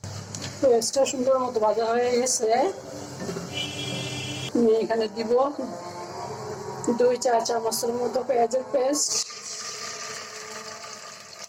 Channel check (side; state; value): both; identical; correlation 1.00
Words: পেঁয়াজটা সুন্দর মতো ভাজা হয়ে গেছে। আমি এখানে দিব 2 চা চামচের মতো পেঁয়াজের পেস্ট,